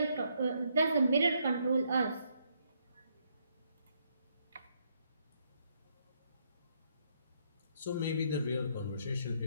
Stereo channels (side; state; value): both; inverted; correlation -0.73